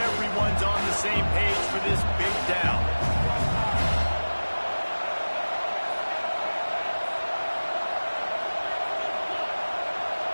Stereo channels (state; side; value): inverted; both; correlation -1.00